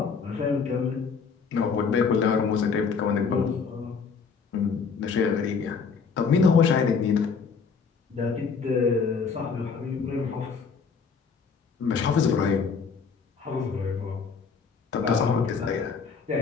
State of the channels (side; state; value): right; quieter; 5.6 dB